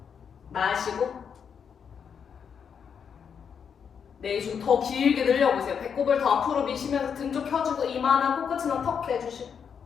마시고 내쉬고 더 길게 늘려보세요. 배꼽을 더 앞으로 미시면서 등 쪽 펴주고 이마나 코끝이나 턱 대주시고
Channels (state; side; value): quieter; right; 7.1 dB